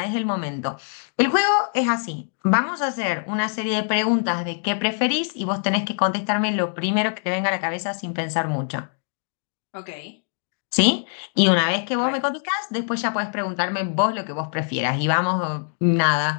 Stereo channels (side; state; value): right; silent; digital silence